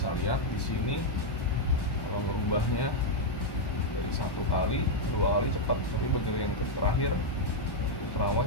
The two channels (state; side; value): late; right; 1.1 ms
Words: lihat di sini kalau ngerubahnya dari 1 kali, 2 kali cepat, tapi begitu yang terakhir ultrawide